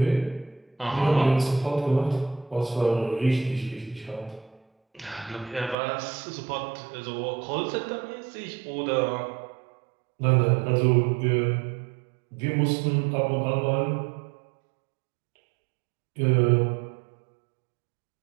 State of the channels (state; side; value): drops out; left; at 5.8 s